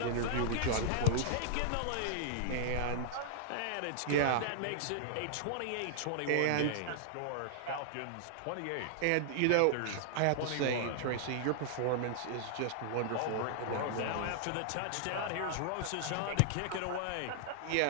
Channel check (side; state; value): both; different; correlation -0.01